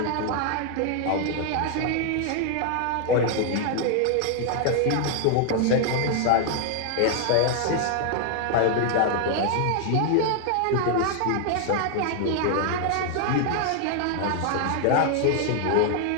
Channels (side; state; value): both; different; correlation 0.00